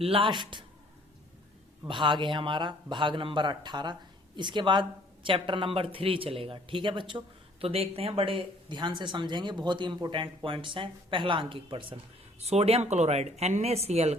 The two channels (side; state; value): both; normal; correlation 0.58